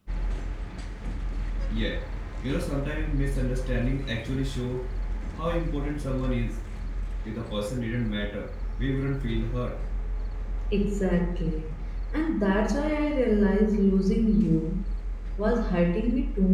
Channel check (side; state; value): both; identical; correlation 1.00